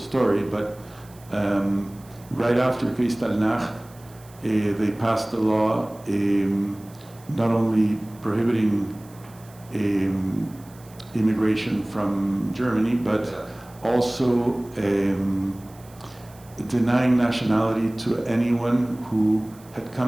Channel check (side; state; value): right; noise; hiss, 25 dB below the sound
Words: but right after Kristallnacht, they passed a law not only prohibiting immigration from Germany, but also denying nationality to anyone who had